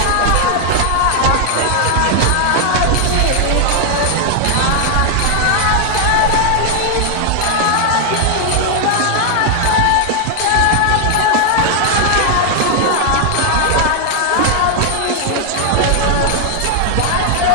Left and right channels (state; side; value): different; both; correlation 0.00